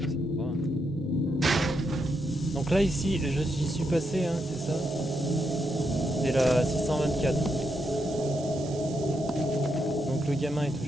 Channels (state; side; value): normal; both; correlation 0.81